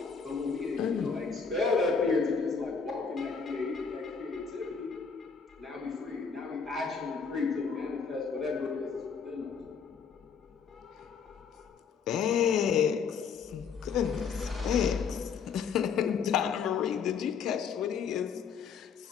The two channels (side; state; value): right; quieter; 6.0 dB